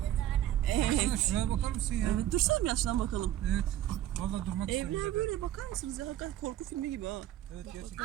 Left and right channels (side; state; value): left; quieter; 12.6 dB